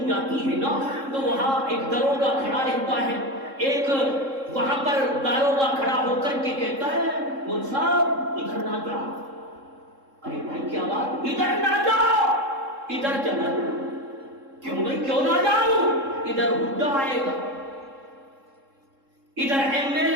جاتی ہے نا تو وہاں ایک داروغہ کھڑا رہتا ہے، ایک وہاں پر داروغہ کھڑا ہو کر کے کہتا ہے مول صاحب ادھر نہ جاؤ. ارے بھائی کیا بات، ادھر نہ جاؤ، ادھر چلا جاؤ. کیوں بھائی کیوں نہ جاؤں؟ ادھر بڈھا آئے گا، ادھر ایم ایل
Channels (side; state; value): left; late; 3.7 ms